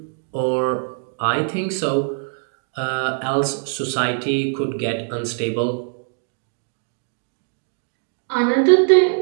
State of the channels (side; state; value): left; silent; 64 dB below the other